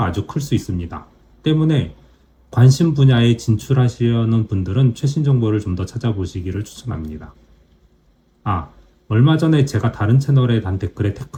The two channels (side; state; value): both; identical; correlation 1.00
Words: 아주 클 수 있습니다. 때문에 관심 분야에 진출하시려는 분들은 최신 정보를 좀 더 찾아보시기를 추천합니다. 얼마 전에 제가 다른 채널에 단 댓글에